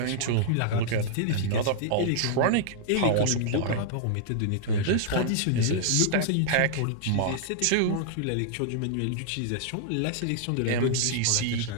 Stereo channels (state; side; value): different; both; correlation -0.01